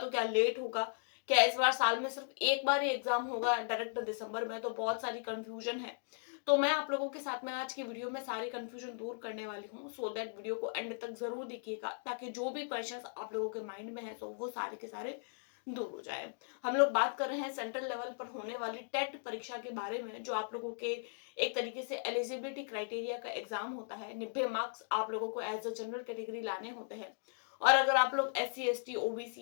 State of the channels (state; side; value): silent; right; digital silence